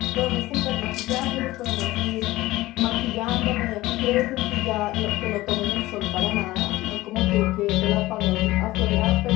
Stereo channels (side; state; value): right; quieter; 18.0 dB